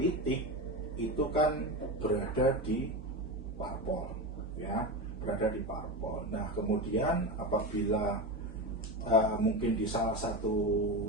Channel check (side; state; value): both; normal; correlation 0.20